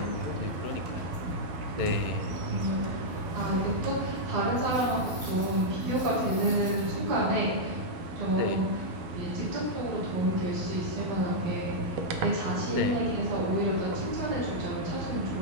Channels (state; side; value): late; left; 12 ms